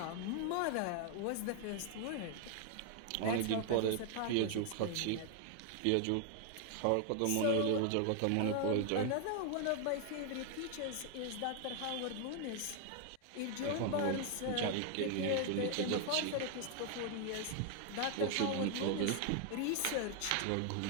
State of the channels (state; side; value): different; both; correlation 0.00